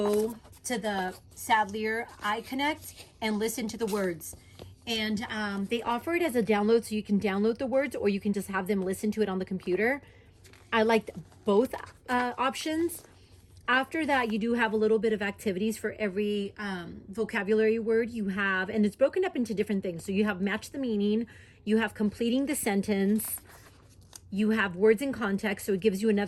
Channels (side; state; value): both; identical; correlation 1.00